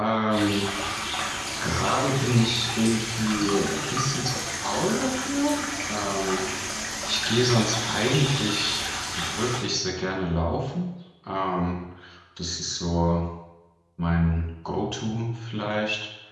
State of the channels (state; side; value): identical; both; correlation 1.00